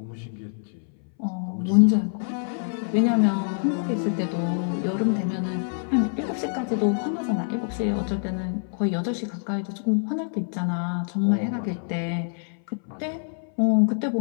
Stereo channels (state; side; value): silent; right; 61 dB below the other